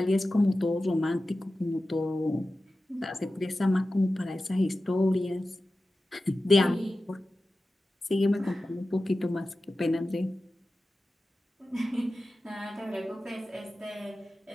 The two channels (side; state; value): both; normal; correlation 0.94